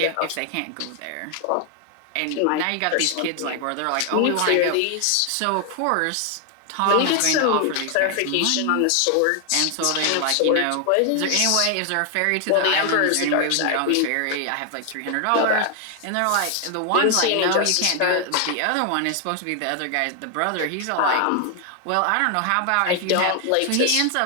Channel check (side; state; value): both; different; correlation 0.00